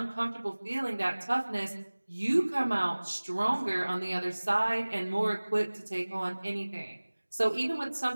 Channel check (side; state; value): both; inverted; correlation -1.00